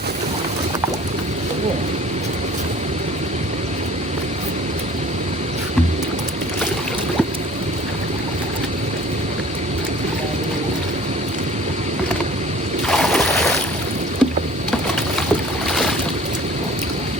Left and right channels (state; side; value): normal; both; correlation 0.48